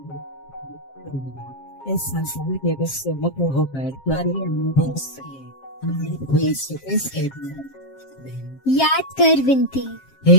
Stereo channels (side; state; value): right; late; 7.5 ms